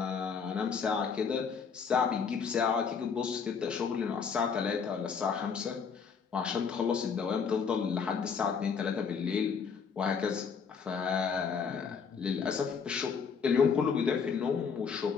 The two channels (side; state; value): right; quieter; 6.1 dB